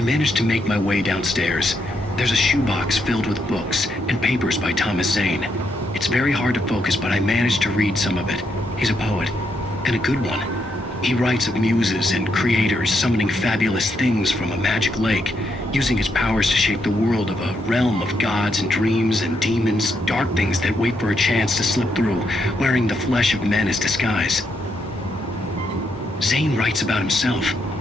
managed to make my way downstairs. There's a shoebox filled with books and papers by Thomas Zane. It's very hard to focus, but I managed to read some of it. He's a poet, and a good one. He writes of muses and creators summoning fabulous things from a magic lake, using his powers to shape the world of a realm of gods and dreams and demons, dark things that wait for a chance to slip through, wearing the flesh of men as disguise. Zane writes about himself,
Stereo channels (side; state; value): both; normal; correlation 0.79